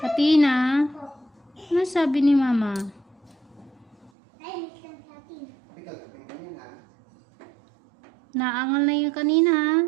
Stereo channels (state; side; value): drops out; left; at 4.1 s